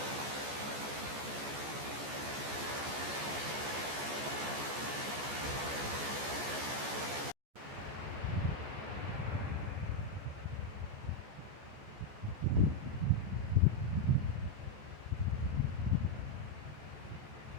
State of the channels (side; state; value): left; late; 14 ms